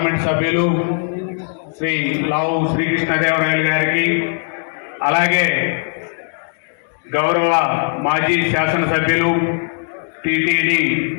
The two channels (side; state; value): right; silent; digital silence